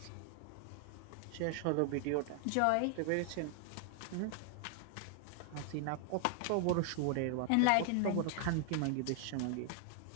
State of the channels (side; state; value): both; different; correlation 0.00